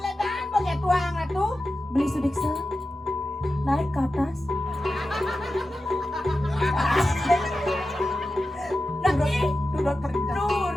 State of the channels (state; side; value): normal; both; correlation 0.92